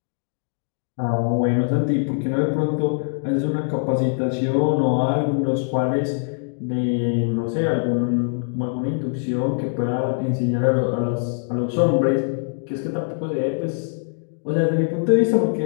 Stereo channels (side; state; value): right; silent; digital silence